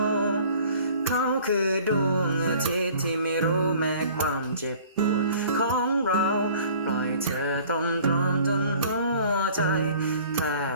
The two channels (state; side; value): inverted; both; correlation -0.50